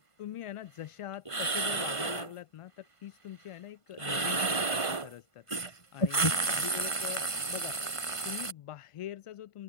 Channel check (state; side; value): late; right; 1.5 ms